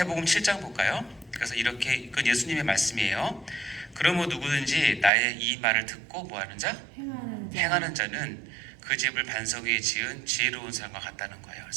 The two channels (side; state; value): left; drops out; at 5.1 s